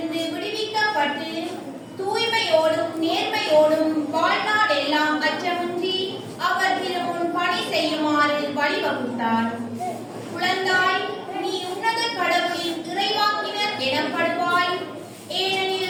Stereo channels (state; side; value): identical; both; correlation 1.00